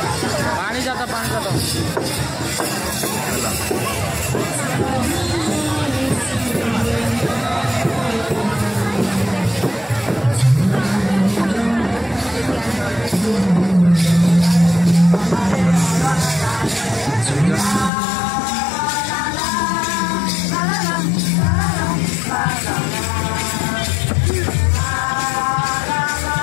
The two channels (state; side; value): drops out; right; at 17.9 s